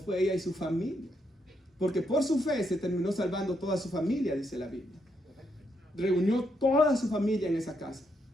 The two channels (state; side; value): normal; both; correlation 0.78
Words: ella y su familia. Porque por su fe se terminó salvando toda su familia, dice la Biblia. Reunió toda su familia en esa casa.